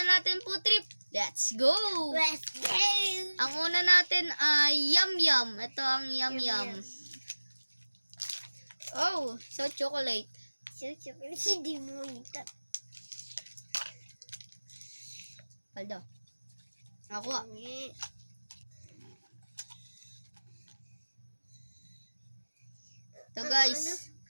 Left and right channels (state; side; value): inverted; both; correlation -1.00